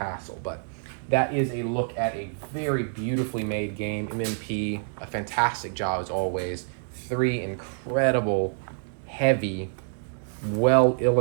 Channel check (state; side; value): silent; left; digital silence